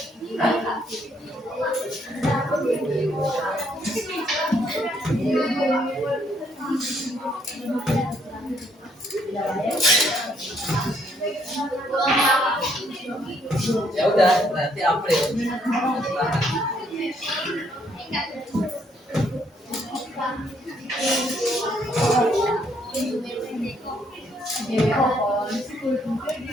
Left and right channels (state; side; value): normal; both; correlation 0.69